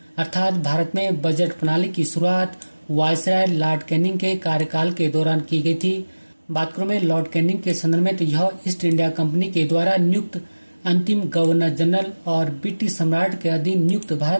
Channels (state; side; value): inverted; both; correlation -1.00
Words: अर्थात भारत में बजट प्रणाली की शुरुआत वायसराय लॉर्ड कैनिंग के कार्यकाल के दौरान की गई थी। बात करूं मैं लॉर्ड कैनिंग के संदर्भ में, तो यह ईस्ट इंडिया कंपनी के द्वारा नियुक्त अंतिम गवर्नर जनरल और ब्रिटिश सम्राट के अधीन नियुक्त